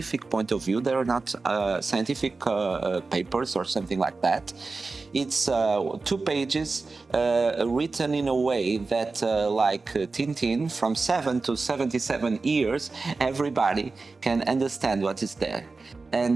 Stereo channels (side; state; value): left; quieter; 3.9 dB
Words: point of view. They are not scientific papers or something like that. It's 2 pages written in a way that, like Tintin, from 7 to 77 years, everybody can understand what is there.